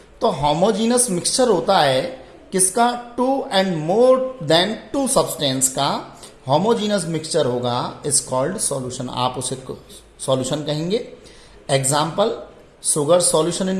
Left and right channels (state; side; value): identical; both; correlation 1.00